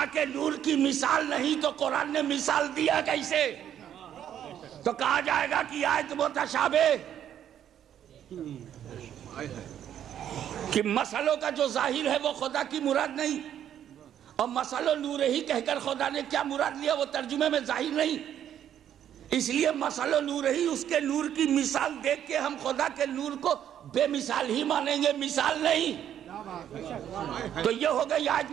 کے نور کی مثال نہیں تو قرآن نے مثال دیا کیسے؟ تو کہا جائے گا کہ آیت متشابہ، کہ مسئلوں کا جو ظاہر ہے وہ خدا کی مراد نہیں، اور مسئلہ نور ہی کہہ کر خدا نے کیا مراد لیا وہ ترجمے میں ظاہر نہیں، اس لیے مسئلہ نور ہی، اس کے نور کی مثال دیکھ کے ہم خدا کے نور کو بے مثال ہی مانیں گے، مثال نہیں۔ تو یہ ہو گئی آیت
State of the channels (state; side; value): quieter; left; 10.1 dB